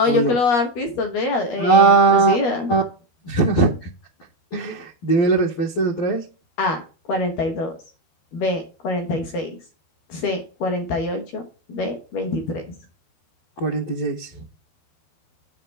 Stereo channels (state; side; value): late; right; 13 ms